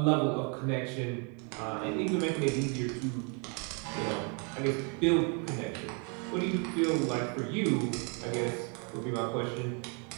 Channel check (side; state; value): left; quieter; 35.8 dB